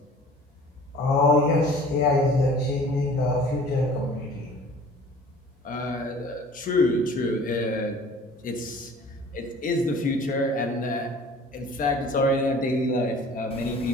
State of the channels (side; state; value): both; normal; correlation 0.47